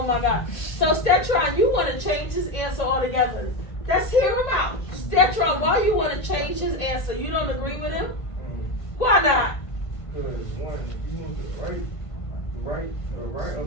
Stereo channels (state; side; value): late; right; 1.5 ms